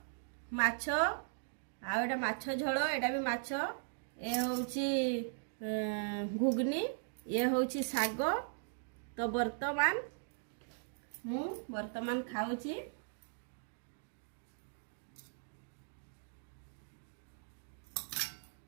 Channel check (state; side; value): silent; left; digital silence